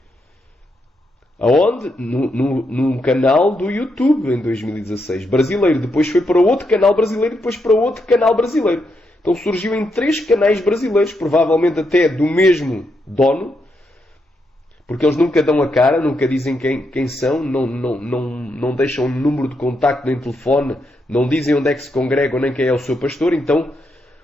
Aonde? Num canal do YouTube, em 2016. Brasileiro. Depois foi para outro canal brasileiro, depois para outro canal brasileiro. Então surgiu em 3 canais brasileiros, provavelmente até do mesmo dono, porque eles nunca dão a cara, nunca dizem quem são, não deixam número de contacto nem telefone, não dizem onde é que se congregam nem quem é o seu pastor. Então,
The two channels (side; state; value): both; normal; correlation 0.81